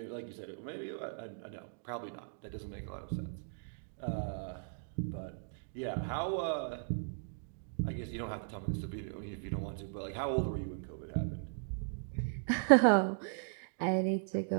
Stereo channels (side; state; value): left; silent; digital silence